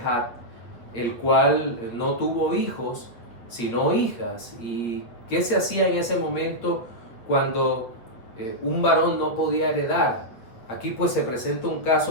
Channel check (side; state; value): right; late; 8.3 ms